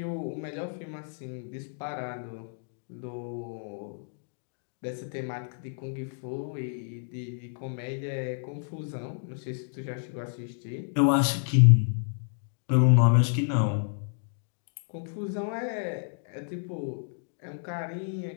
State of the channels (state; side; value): silent; right; digital silence